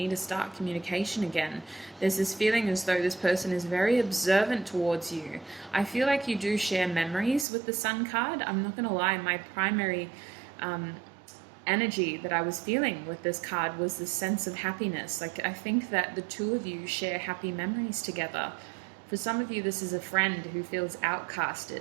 to start communication again. There's this feeling as though this person is very observant towards you. I feel like you do share memories with the Sun card. I'm not going to lie, my primary energy that I was feeling with this card was this sense of happiness. Like, I think that the two of you share happy memories together. For some of you, this is a friend who feels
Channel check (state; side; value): drops out; left; at 7.5 s